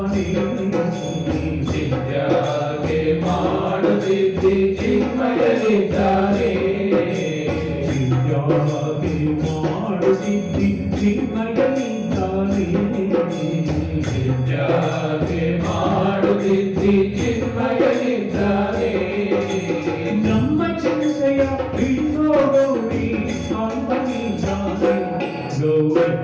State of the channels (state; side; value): identical; both; correlation 1.00